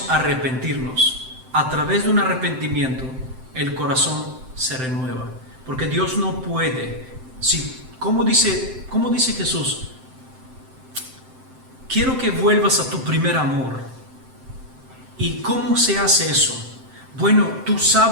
arrepentirnos. A través de un arrepentimiento, el corazón se renueva. Porque Dios no puede. ¿Cómo dice Jesús? Quiero que vuelvas a tu primer amor. ¿Y cómo se hace eso? Bueno, tú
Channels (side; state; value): left; late; 7.7 ms